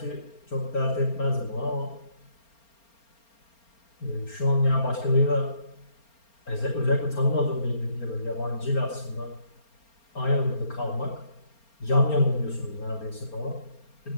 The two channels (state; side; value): late; right; 4.3 ms